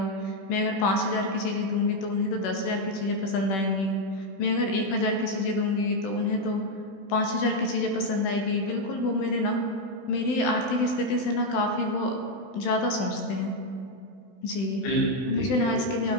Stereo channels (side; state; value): right; late; 16 ms